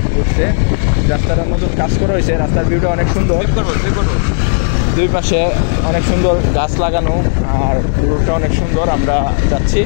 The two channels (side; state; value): right; silent; digital silence